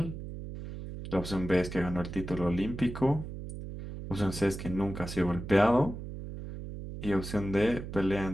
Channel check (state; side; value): noise; right; hum, 9 dB below the sound